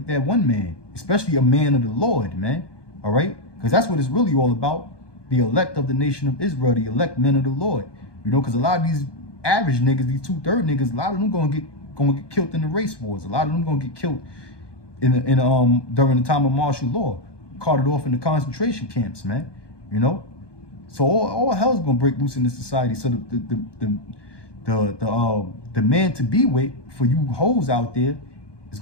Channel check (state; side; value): late; right; 1.2 ms